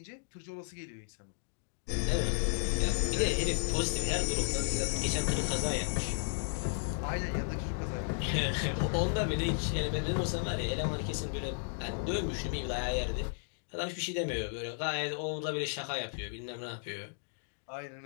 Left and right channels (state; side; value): silent; right; digital silence